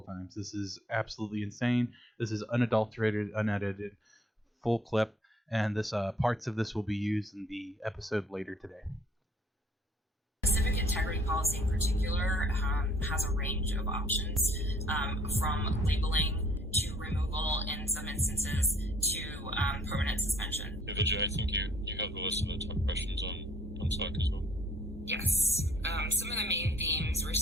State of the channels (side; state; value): both; normal; correlation 0.60